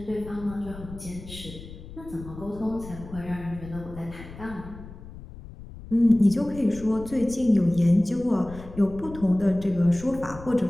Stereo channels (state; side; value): noise; left; rumble, 15 dB below the sound